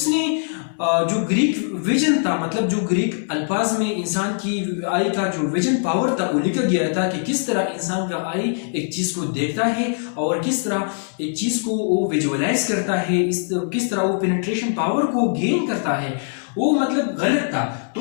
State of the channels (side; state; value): right; silent; digital silence